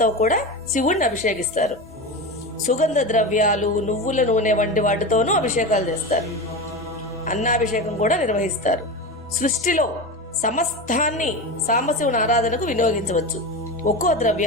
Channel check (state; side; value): normal; both; correlation 0.24